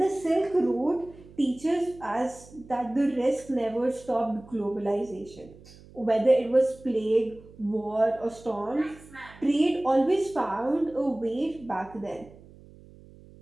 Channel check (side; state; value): right; noise; hum, 22 dB below the sound